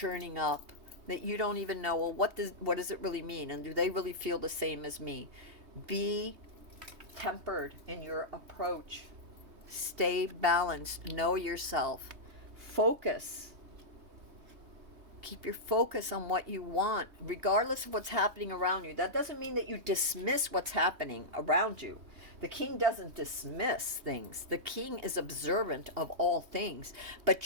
up that you don't even know, well, what does it really mean, and do they really feel the same as me? Be tempered in your approach. Stay balanced. Know yourself. Focus. Keep your focus on what you want, regardless of what's happening around you. That doesn't mean that you dismiss what's happening around you. The king doesn't dismiss things. The king is observant of all things, but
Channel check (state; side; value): late; left; 3.2 ms